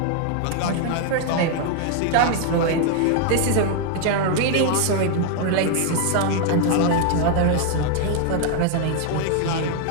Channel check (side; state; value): both; different; correlation 0.00